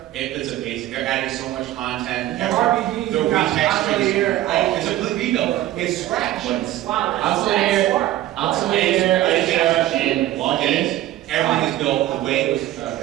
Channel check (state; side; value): quieter; left; 14.2 dB